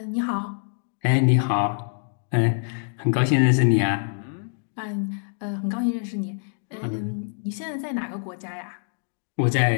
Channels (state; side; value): silent; right; digital silence